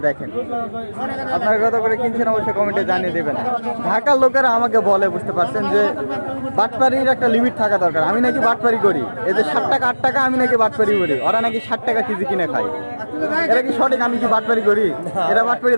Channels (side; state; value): both; inverted; correlation -1.00